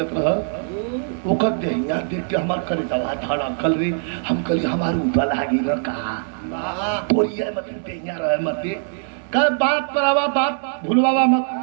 रहा ओकर देहिया देख के हमार करे दवा धड़ा कल री हम कली हमार ऊपर लागी न कहा तोड़िए मत देहिया रहे मत का बात पर आवा बात भूलवावा मत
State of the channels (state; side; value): silent; left; 64 dB below the other